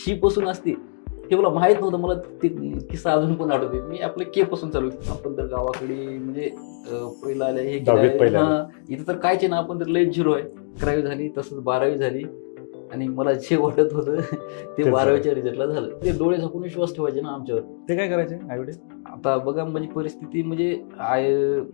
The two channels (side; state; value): right; silent; digital silence